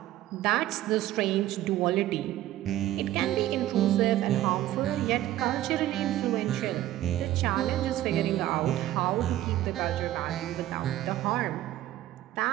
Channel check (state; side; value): quieter; left; 14.1 dB